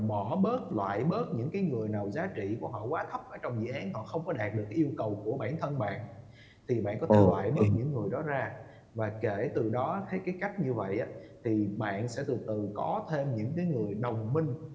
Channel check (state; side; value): identical; both; correlation 1.00